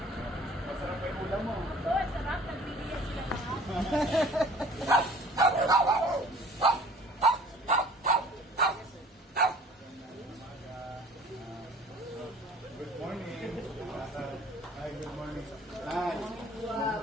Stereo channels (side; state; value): both; normal; correlation 0.49